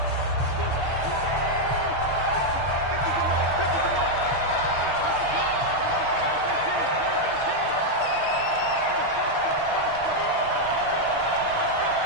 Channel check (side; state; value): left; late; 6.5 ms